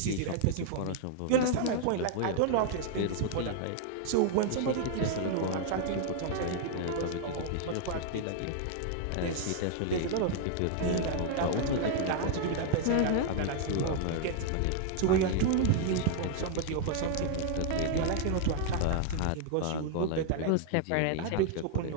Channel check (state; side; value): different; both; correlation 0.00